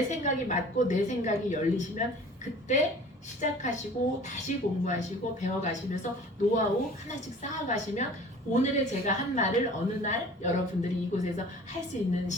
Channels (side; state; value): both; normal; correlation 0.46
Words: 생각이 맞고 내 생각이 열리시면 그때 시작하시고 다시 공부하시고 배워가시면서 노하우 하나씩 쌓아가시면 오늘의 제가 한 말을 어느 날 여러분들이 이곳에서 할 수 있는